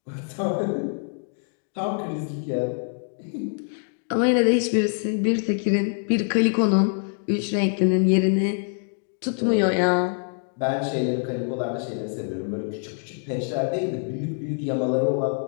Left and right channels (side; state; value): right; silent; 62 dB below the other